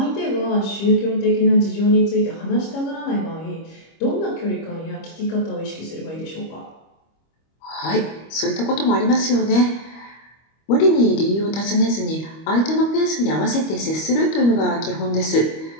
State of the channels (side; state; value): right; late; 25 ms